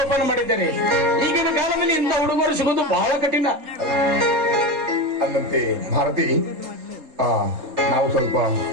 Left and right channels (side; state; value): left; late; 3.7 ms